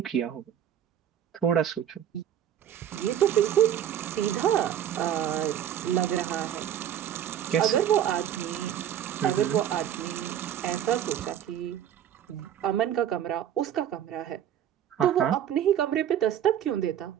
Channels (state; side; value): quieter; left; 10.2 dB